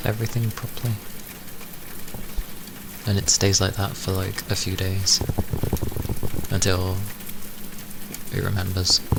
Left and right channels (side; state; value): both; identical; correlation 1.00